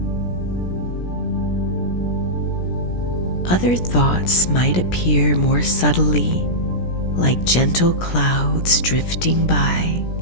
Other thoughts might appear more subtly, like gentle clouds drifting by.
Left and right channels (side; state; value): right; late; 17 ms